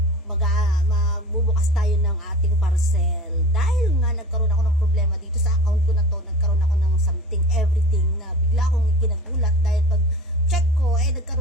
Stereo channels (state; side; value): normal; both; correlation 0.37